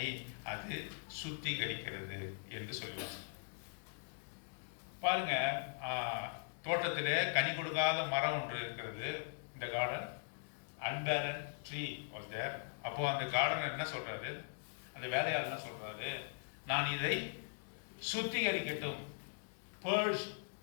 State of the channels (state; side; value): silent; right; digital silence